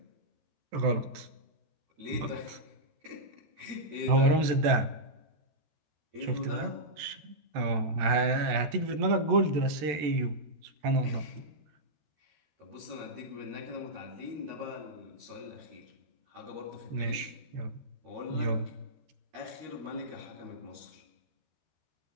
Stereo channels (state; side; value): late; left; 14 ms